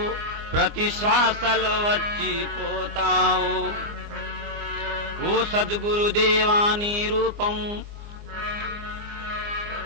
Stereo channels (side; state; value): left; late; 24 ms